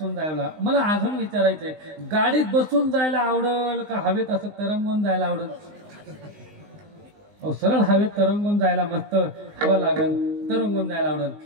जायला मला अजून विचारायचंय, गाडीत बसून जायला आवडेल का हवेत असं तरंगून जायला आवडेल? सरळ हवेत तरंगून जायला मस्त हवा लागेल, तरंगून जायला आवडेल.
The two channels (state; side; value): late; left; 19 ms